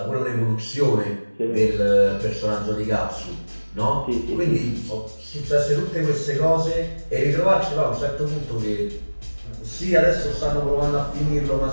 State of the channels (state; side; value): inverted; both; correlation -1.00